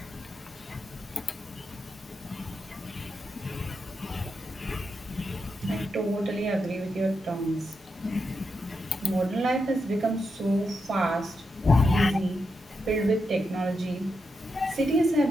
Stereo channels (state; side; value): normal; both; correlation 0.85